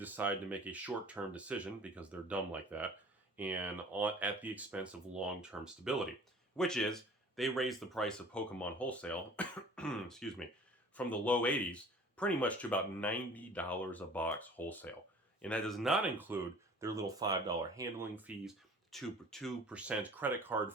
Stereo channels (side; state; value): both; normal; correlation 0.47